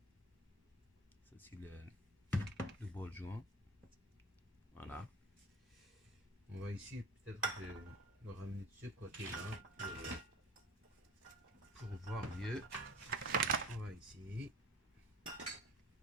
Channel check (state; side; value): normal; both; correlation 0.39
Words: ça c'est le ball joint. Voilà, on va essayer peut-être de le ramener de ce côté-là pour voir mieux. On va essayer.